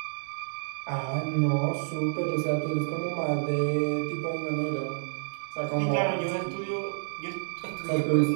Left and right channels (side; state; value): left; silent; digital silence